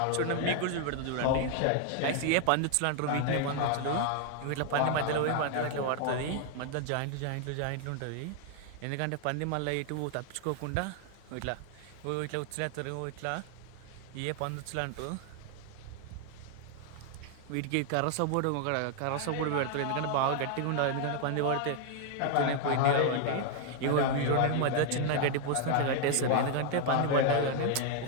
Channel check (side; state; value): both; different; correlation 0.00